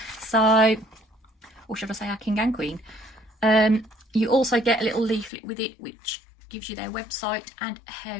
so, or should I say our king and queen. You also get a little leaflet with it which gives you their website and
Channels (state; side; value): drops out; right; at 5.3 s